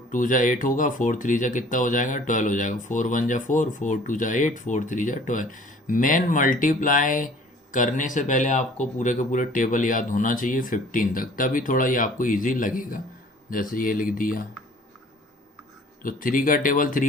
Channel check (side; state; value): both; normal; correlation 0.51